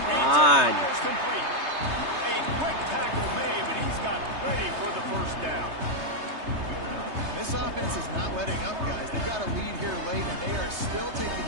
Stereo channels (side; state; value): left; late; 3.3 ms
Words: on. Complete. A quick tackle made, but he's got plenty for the first down. This offense is not letting up, guys. They've got a lead here late, and they are still taking